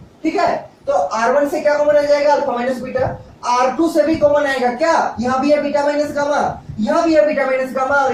ठीक है। तो R1 से क्या कॉमन आ जाएगा, अल्फा माइनस बीटा। R2 से भी कॉमन आएगा क्या, यहाँ भी है बीटा माइनस गामा, यहाँ भी है बीटा माइनस गामा,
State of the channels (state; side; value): identical; both; correlation 1.00